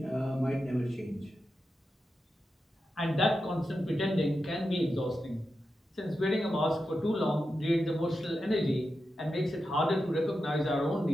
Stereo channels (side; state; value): both; normal; correlation 0.89